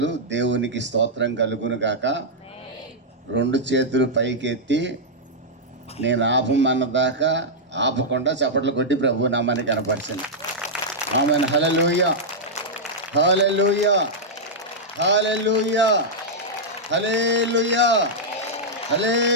దేవునికి స్తోత్రం కలుగును గాక. 2 చేతులు పైకెత్తి నేను ఆపమన్నదాకా ఆపకుండా చప్పట్లు కొట్టి ప్రభు నామాన్ని కనపరిచింది. Amen. Hallelujah, hallelujah, hallelujah, hallelujah,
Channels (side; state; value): both; normal; correlation -0.07